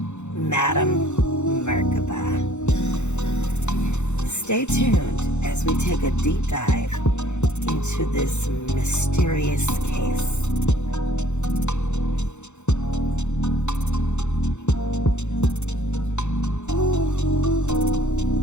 Madam Merkaba. Stay tuned as we take a deep dive into this mysterious case.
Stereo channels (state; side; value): late; right; 0.83 ms